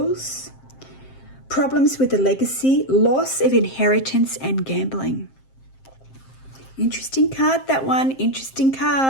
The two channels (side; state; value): right; late; 7.6 ms